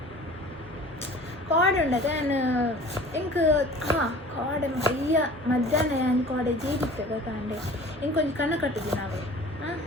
ಕಾಡ್ ಉಂಡದೆ ನಾನು ಇಂಕ ಕಾಡೆ ಅಯ್ಯ ಮಧ್ಯಾಹ್ನ ನಾನು ಕಾಡೆ ಜೇಡಿತ್ತೆ ಕಾಂಡೆ ಇಂಕೊಂಚು ಕಣ್ಣ ಕಟ್ಟಿದ್ವಿ ನಾವು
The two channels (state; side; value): normal; both; correlation 0.44